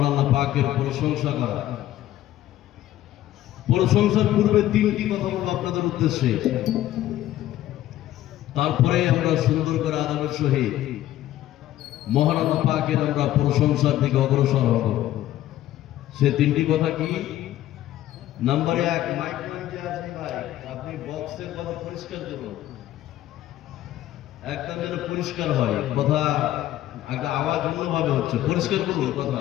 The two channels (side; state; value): right; quieter; 13.7 dB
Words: আল্লাহ পাকের প্রশংসা করা। প্রশংসার পূর্বে তিনটি কথা বলবো আপনাদের উদ্দেশ্যে, তারপরে আমরা সুন্দর করে আদবের সহিত মহান আল্লাহ পাকের আমরা প্রশংসার দিকে অগ্রসর হব। সে তিনটি কথা কি? নাম্বার 1, মাইক্রোফোন যে আছে ভাই, আপনি বক্সের কথা পরিষ্কার করুন, একদম যেন পরিষ্কার হয় কথা, একটা আওয়াজ অন্যভাবে হচ্ছে, পরিষ্কার করুন